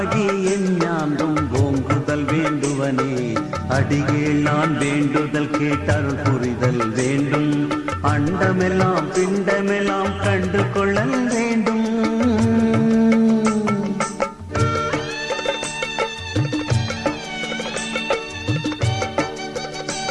எஞ்ஞான்றும் ஓங்குதல் வேண்டுவனே. அடிகீழ் நான் வேண்டுதல் கேட்டருள் புரிதல் வேண்டும். அண்டமெல்லாம் பிண்டமெல்லாம் கண்டு கொள்ளல் வேண்டும்.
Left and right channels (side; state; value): both; identical; correlation 1.00